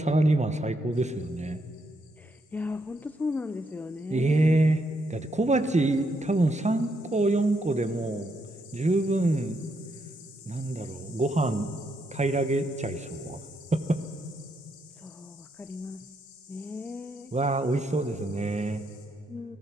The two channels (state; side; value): normal; both; correlation 0.78